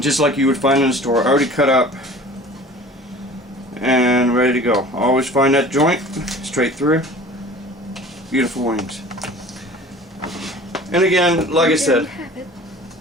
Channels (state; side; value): normal; both; correlation 0.44